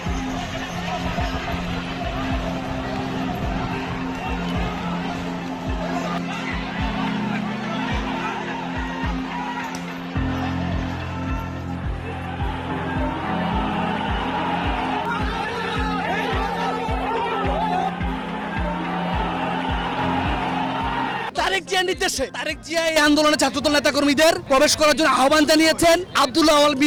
তারেক জিয়ার নির্দেশে তারেক জিয়া এই আন্দোলনে ছাত্রদল নেতাকর্মীদের প্রবেশ করার জন্য আহ্বান জানিয়েছেন। আব্দুল্লাহ আওয়াল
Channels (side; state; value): both; identical; correlation 1.00